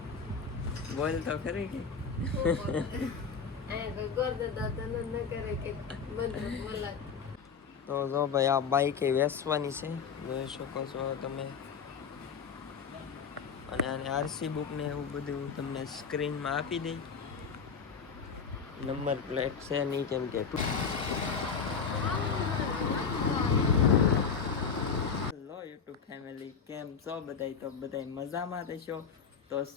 બોલ તો ખરી કે તો જો ભાઈ આ બાઈક એ વેચવાની છે, જોઈ શકો છો તમે. અને આને આરસી બુક ને એવું બધું તમને સ્ક્રીનમાં આપી દઈ. નંબર પ્લેટ છે નહીં કેમ કે હેલો યુટ્યુબ ફેમિલી, કેમ છો બધાય? તો બધાય મજામાં રહેશો. તો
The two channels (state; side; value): quieter; right; 6.0 dB